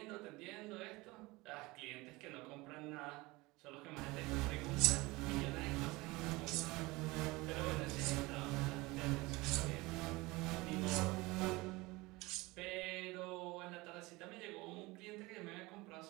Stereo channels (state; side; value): quieter; left; 22.4 dB